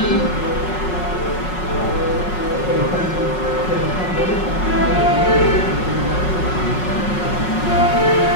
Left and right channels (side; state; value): right; late; 5.5 ms